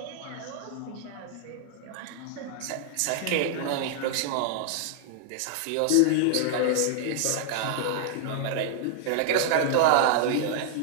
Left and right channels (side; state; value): both; different; correlation -0.01